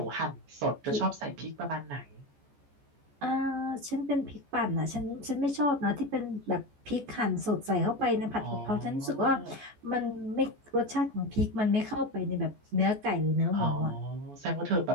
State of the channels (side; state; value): left; late; 14 ms